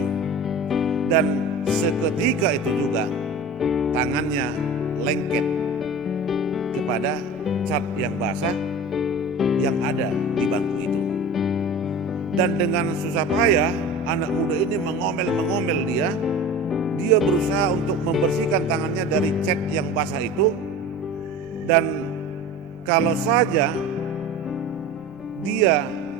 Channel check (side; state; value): right; noise; rumble, 29 dB below the sound